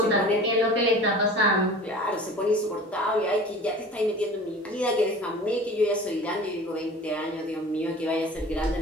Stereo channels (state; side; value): normal; both; correlation 0.40